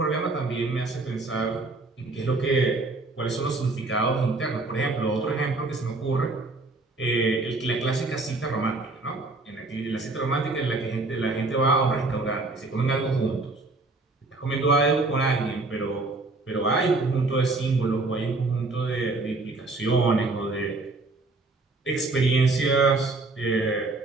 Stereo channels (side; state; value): left; quieter; 3.3 dB